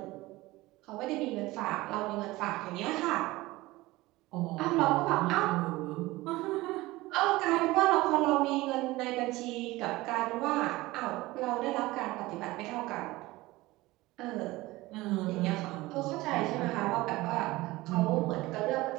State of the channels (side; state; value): left; quieter; 19.5 dB